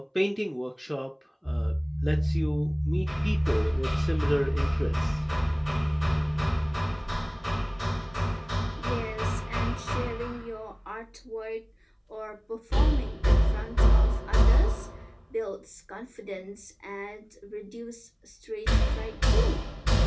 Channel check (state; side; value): identical; both; correlation 1.00